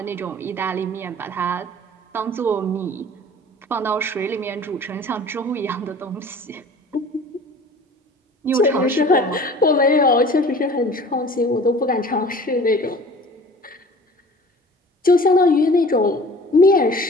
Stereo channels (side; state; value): both; normal; correlation 0.45